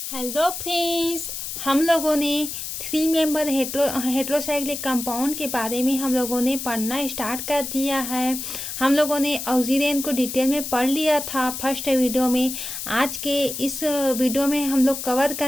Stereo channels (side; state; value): left; noise; hiss, 6 dB below the sound